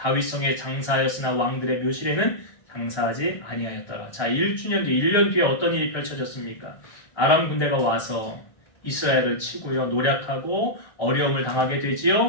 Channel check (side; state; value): right; late; 1.3 ms